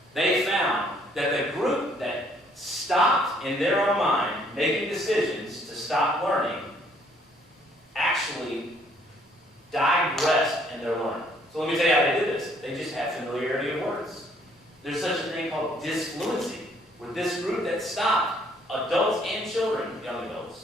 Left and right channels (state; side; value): normal; both; correlation 0.64